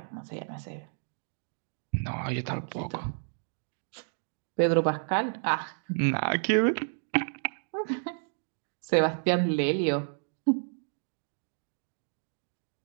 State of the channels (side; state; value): left; silent; 56 dB below the other